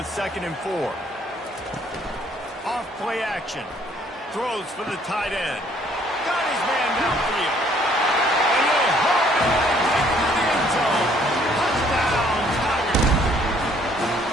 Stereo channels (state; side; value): normal; both; correlation 0.62